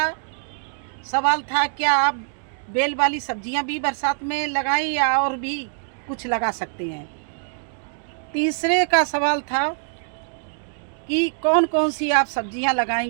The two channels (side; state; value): left; silent; digital silence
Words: सवाल था, क्या आप बेल वाली सब्जियां भी बरसात में लगाएं या और भी कुछ लगा सकते हैं। तीसरे का सवाल था कि कौन कौन सी आप सब्जियां